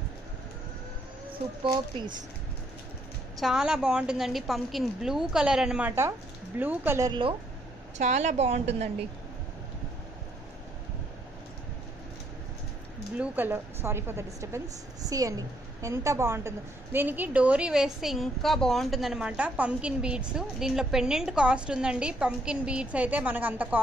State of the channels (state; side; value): normal; both; correlation 0.71